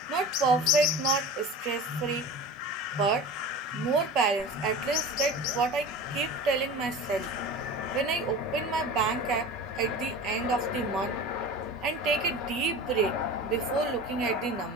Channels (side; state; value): both; normal; correlation 0.34